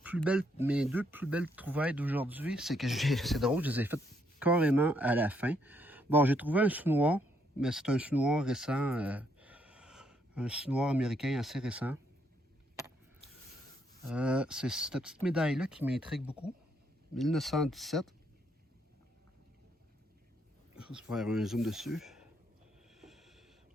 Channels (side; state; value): both; normal; correlation 0.73